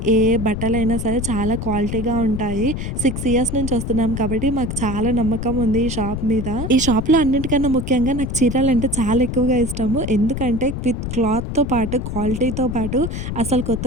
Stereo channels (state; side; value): noise; left; rumble, 5 dB below the sound